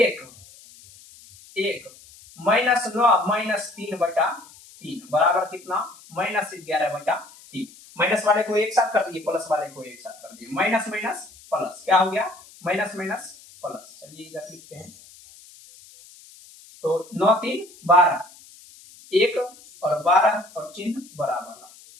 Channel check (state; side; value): noise; left; hiss, 22 dB below the sound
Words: 1 -9 -3/3 बराबर कितना -11/3। माइनस वाले को एक साथ कर दिए, प्लस वाले को एक साथ कर दिए, माइनस माइनस प्लस क्या हो गया माइनस माइनस प्लस। चलिए इधर लिखते हैं तो 9 3 12 1 और 12 और चिन्ह बराबर